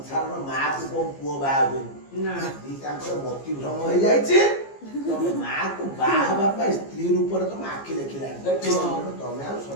ମାକୁ କୋଉ ପୁଅ ବାହା ହୁଏନି ନା ଦିଟାଙ୍କର ମତି ଭ୍ରମ ହେଇଯାଇଛି ତମ ମାକୁ ବାହା ହେବା ପାଇଁ ସ୍ତ୍ରୀ ରୂପରେ ତମ ଆଖି ଦେଖିଲାଣି ତମେ ଆଉ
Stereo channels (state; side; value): late; right; 15 ms